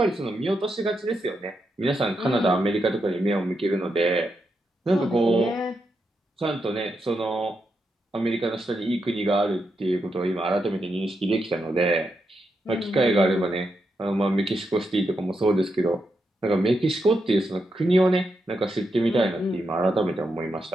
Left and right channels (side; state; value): both; normal; correlation 0.84